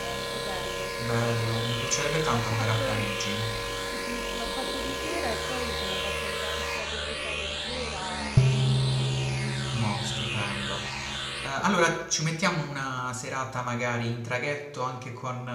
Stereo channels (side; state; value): both; identical; correlation 1.00